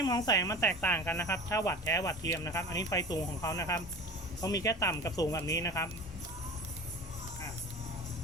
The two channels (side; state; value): both; normal; correlation 0.36